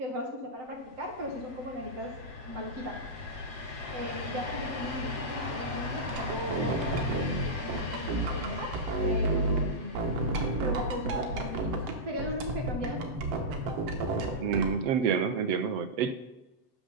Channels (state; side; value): late; left; 7.8 ms